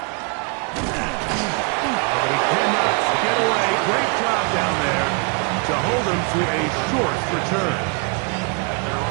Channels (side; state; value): left; quieter; 35.1 dB